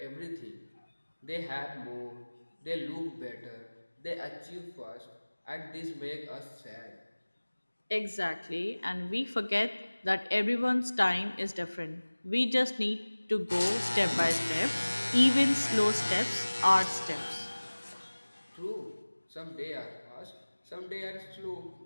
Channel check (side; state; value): both; inverted; correlation -1.00